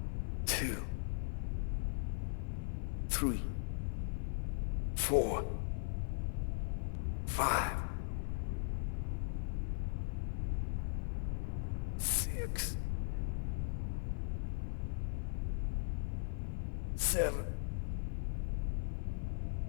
two, three, 4, 5, 6, 7,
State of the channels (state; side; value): silent; right; 52 dB below the other